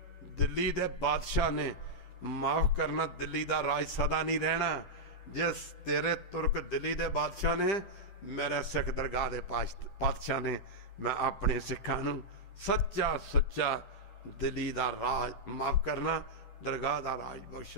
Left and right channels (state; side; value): late; right; 10 ms